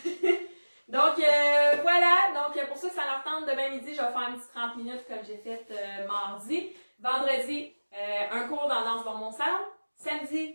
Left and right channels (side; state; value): both; inverted; correlation -1.00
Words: Donc, voilà. Donc, pour ceux que ça leur tente, demain midi, je vais faire un petit 30 minutes comme j'ai fait mardi. Vendredi, un cours dans Danse dans mon salon.